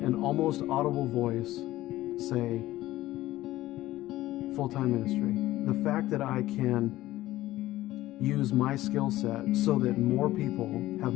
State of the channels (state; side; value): quieter; right; 16.0 dB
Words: an almost audible voice say, full-time ministry. The fact that I can use my skill set so that more people have